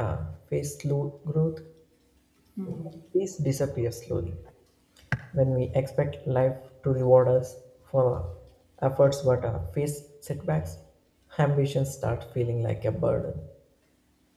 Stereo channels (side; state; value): both; identical; correlation 1.00